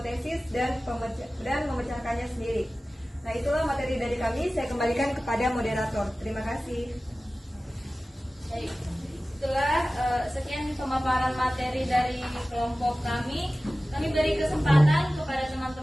dan memecahkannya sendiri. Nah, itulah materi dari kami. Saya kembalikan kepada moderator. Terima kasih. Baik, setelah sekian pemaparan materi dari kelompok kami beri kesempatan kepada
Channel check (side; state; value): both; normal; correlation 0.96